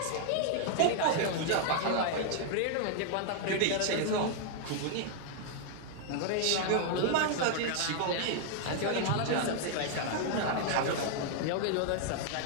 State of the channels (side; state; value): both; different; correlation 0.00